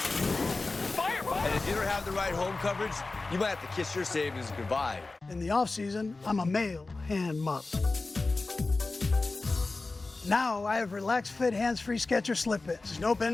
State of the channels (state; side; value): quieter; right; 3.5 dB